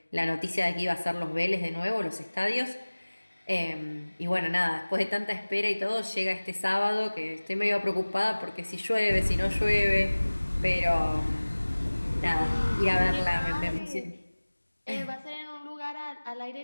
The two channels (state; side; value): inverted; both; correlation -1.00